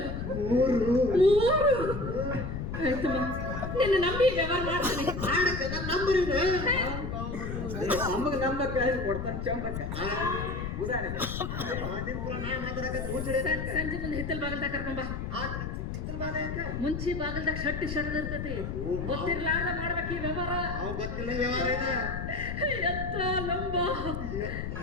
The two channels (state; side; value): noise; left; rumble, 5 dB below the sound